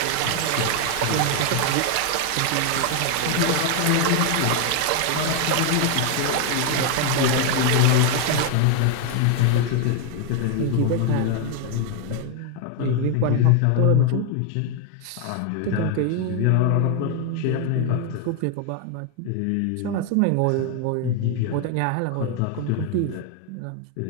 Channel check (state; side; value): different; both; correlation 0.00